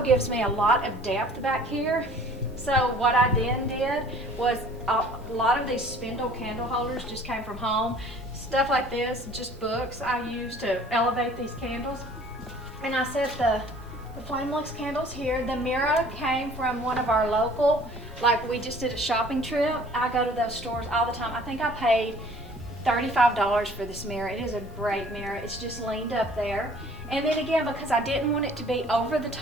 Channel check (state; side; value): normal; both; correlation 0.52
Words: me a lot of depth back here. So what I then did was a lot of these spindle candle holders just came from home. Stuff like this, just books I use to elevate these candles. And I set the Flamelux candles here. The mirror came from one of our local, like we just did a shopping trip. I go to those stores all the time. I think I paid $35 for this mirror. It is a great mirror. It's just leaned up there. And then again, because I didn't want it to be over the